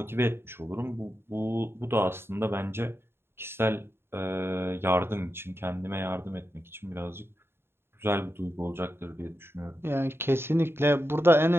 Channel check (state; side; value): late; left; 0.11 ms